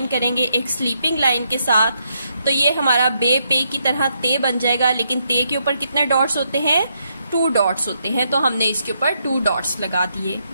करेंगे एक स्लीपिंग लाइन के साथ। तो ये हमारा बे पे की तरह ते बन जाएगा, लेकिन ते के ऊपर कितने डॉट्स होते हैं? 2 डॉट्स होते हैं। तो हमने इसके ऊपर 2 डॉट्स लगा दिए,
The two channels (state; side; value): inverted; both; correlation -0.77